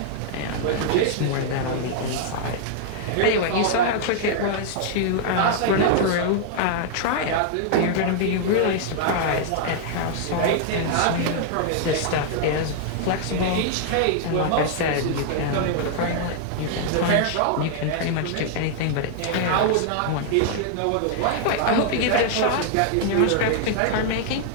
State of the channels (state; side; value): different; both; correlation -0.01